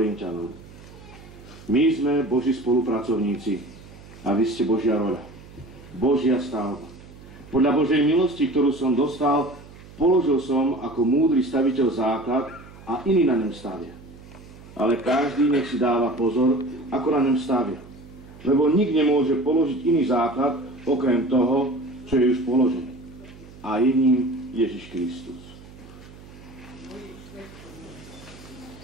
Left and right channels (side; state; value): right; noise; hum, 19 dB below the sound